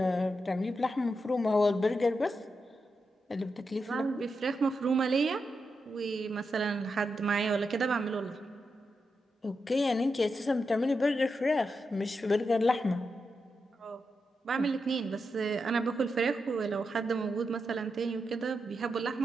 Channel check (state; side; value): normal; both; correlation 0.86